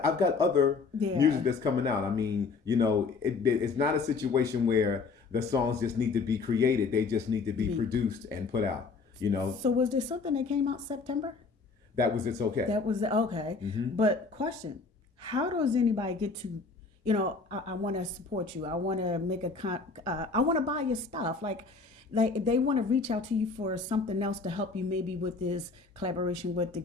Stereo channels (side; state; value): right; quieter; 4.4 dB